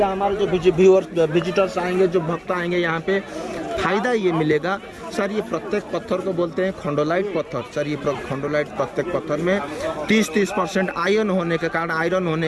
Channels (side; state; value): both; identical; correlation 1.00